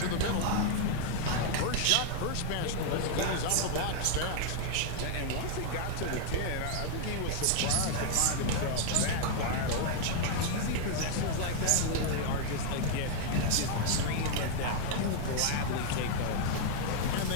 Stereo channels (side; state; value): both; different; correlation 0.00